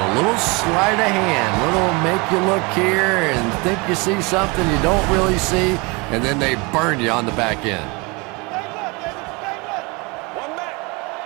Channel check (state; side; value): quieter; left; 27.9 dB